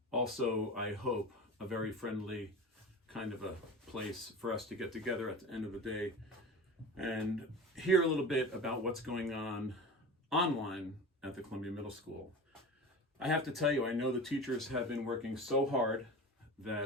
also I hope a very friendly kind of a place for us to get together at the end of the day and hear a little bit about what's going on online at the Columbia Middle School. I have to tell you, I know the teachers have been working so hard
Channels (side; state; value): both; normal; correlation 0.32